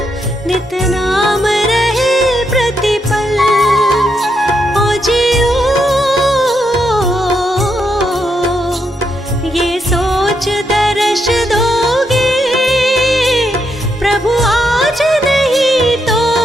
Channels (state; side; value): normal; both; correlation 0.80